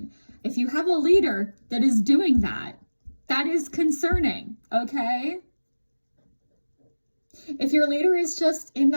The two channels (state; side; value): inverted; both; correlation -1.00